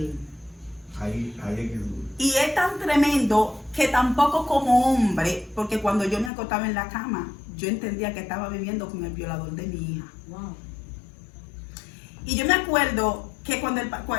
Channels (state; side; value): drops out; right; at 6.3 s